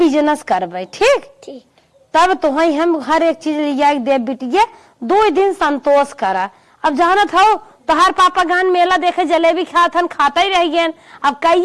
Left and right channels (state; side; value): identical; both; correlation 1.00